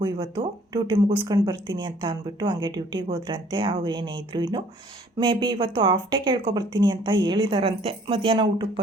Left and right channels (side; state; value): both; normal; correlation 0.57